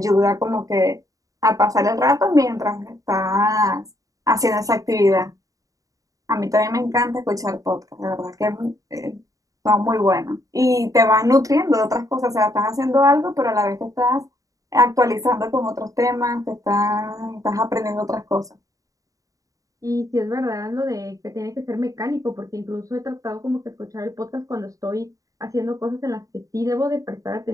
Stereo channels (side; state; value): left; late; 0.16 ms